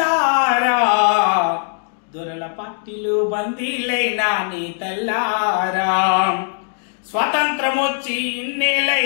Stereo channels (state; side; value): silent; right; 65 dB below the other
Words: దొరల పట్టిలు బందీలైనా నీ తల్లారా. స్వతంత్రం వచ్చి